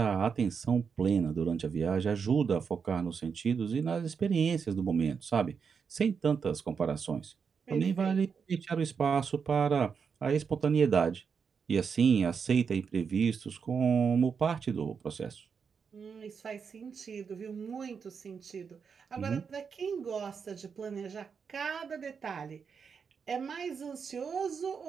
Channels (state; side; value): quieter; left; 6.1 dB